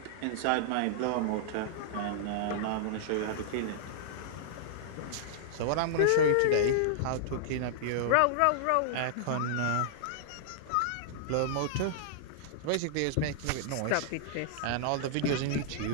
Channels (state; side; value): different; both; correlation -0.01